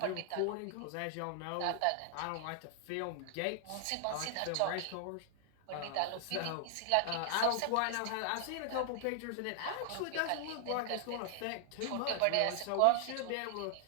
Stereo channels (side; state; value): both; different; correlation 0.00